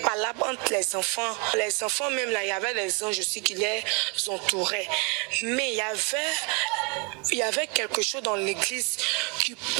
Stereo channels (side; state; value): left; quieter; 33.1 dB